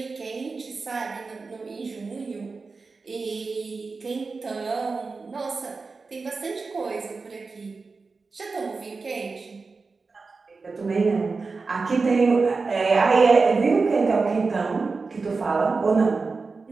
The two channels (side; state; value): left; quieter; 4.2 dB